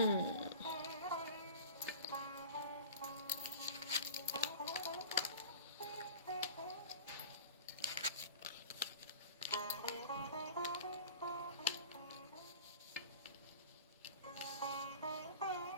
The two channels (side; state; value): both; inverted; correlation -0.38